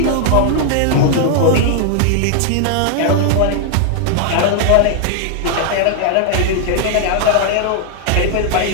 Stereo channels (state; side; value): different; both; correlation 0.00